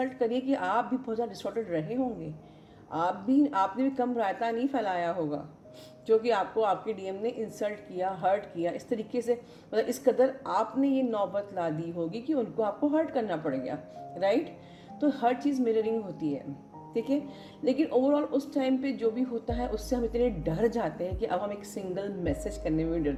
करिए कि आप भी बहुत ज़्यादा डिस्टॉर्टेड रहे होंगे, आपने भी कम रायता नहीं फैलाया होगा, क्योंकि आपको आपके डीएम ने इंसल्ट किया, हर्ट किया इस तरीके से, मतलब इस कदर आपने ये नौबत ला दी होगी कि उनको आपको हर्ट करना पड़ गया, राइट। तो हर चीज़ मिररिंग होती है, ठीक है। लेकिन ओवरऑल उस टाइम पे जो भी होता है उससे हम इतने डर जाते हैं कि अब हम एक सिंगल मैसेज करने में भी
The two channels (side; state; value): both; identical; correlation 1.00